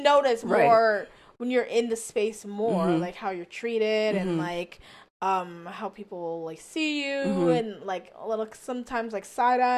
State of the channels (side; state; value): both; identical; correlation 1.00